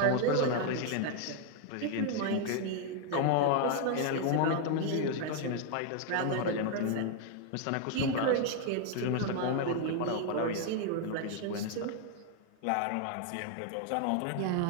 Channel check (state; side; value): different; both; correlation 0.00